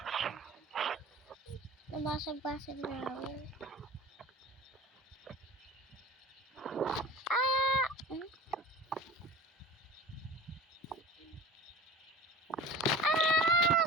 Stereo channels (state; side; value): normal; both; correlation 0.37